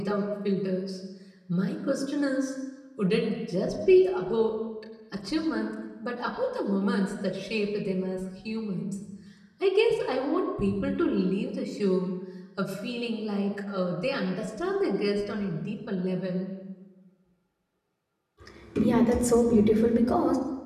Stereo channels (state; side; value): identical; both; correlation 1.00